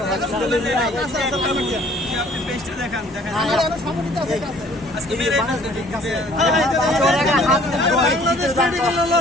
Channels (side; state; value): both; normal; correlation 0.56